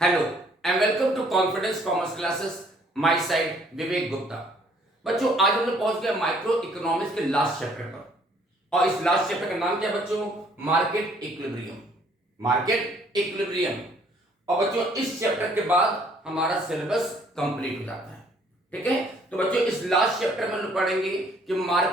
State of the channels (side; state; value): both; normal; correlation 0.62